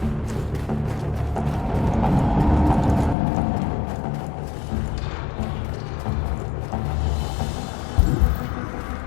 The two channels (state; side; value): drops out; right; at 3.2 s